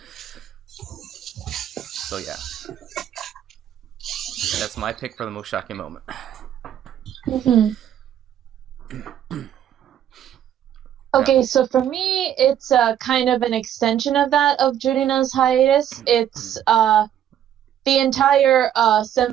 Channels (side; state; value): left; quieter; 10.4 dB